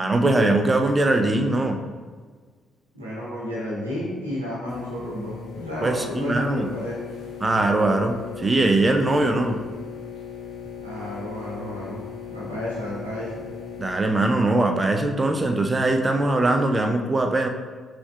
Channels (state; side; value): normal; both; correlation 0.82